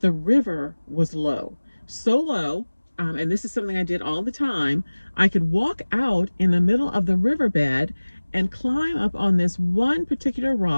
was low. So low, and this is something I did all the time, I could walk out in the middle of the riverbed and climb up on this one particular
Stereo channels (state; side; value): inverted; both; correlation -1.00